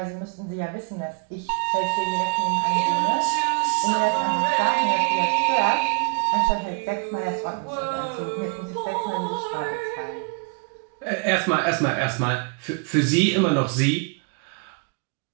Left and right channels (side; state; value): left; quieter; 34.8 dB